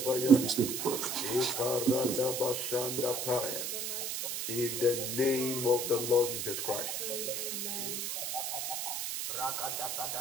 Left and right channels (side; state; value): right; noise; hiss, 2 dB below the sound